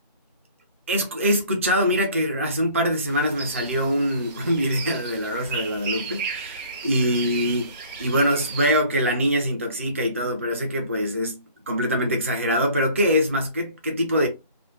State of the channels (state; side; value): inverted; both; correlation -0.51